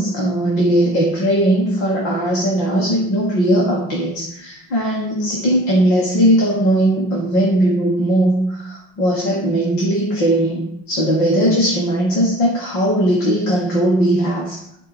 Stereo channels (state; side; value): late; right; 5.5 ms